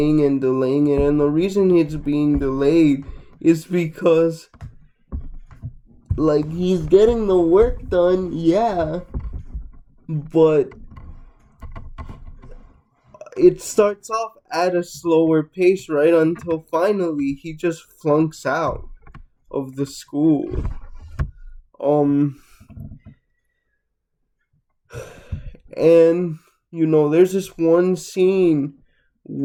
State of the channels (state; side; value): identical; both; correlation 1.00